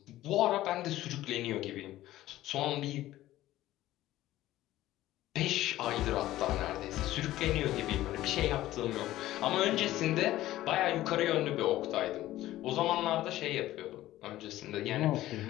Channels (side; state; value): right; quieter; 15.1 dB